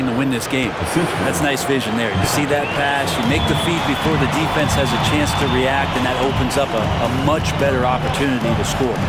to win this game. That's nice vision there. You see that pass, you make the feed before the defense has a chance to react, and that opens up a much better opportunity to score.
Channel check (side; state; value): both; identical; correlation 1.00